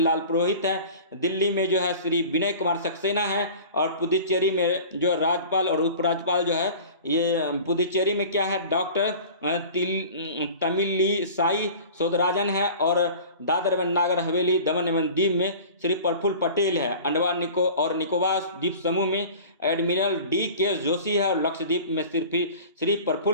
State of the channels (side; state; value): both; inverted; correlation -0.41